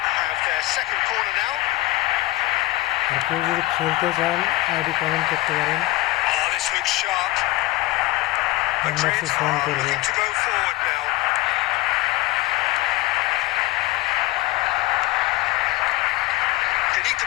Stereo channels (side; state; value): right; quieter; 19.3 dB